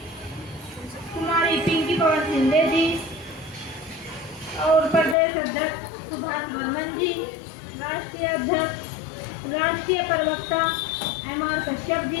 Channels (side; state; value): right; drops out; at 5.2 s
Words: कुमारी पिंकी पवन शिंदे जी और प्रदेश अध्यक्ष सुभाष वर्मन जी, राष्ट्रीय अध्यक्ष राष्ट्रीय प्रवक्ता MR कश्यप